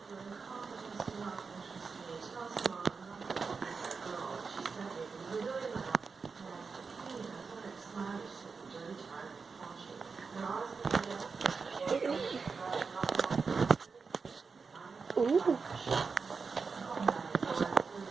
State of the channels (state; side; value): quieter; left; 5.0 dB